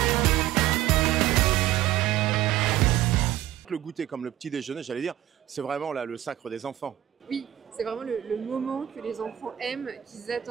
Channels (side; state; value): left; quieter; 13.0 dB